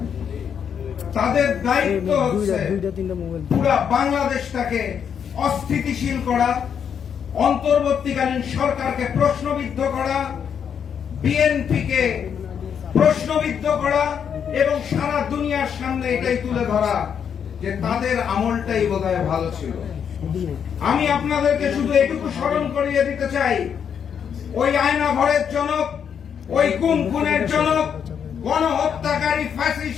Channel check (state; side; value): quieter; right; 7.7 dB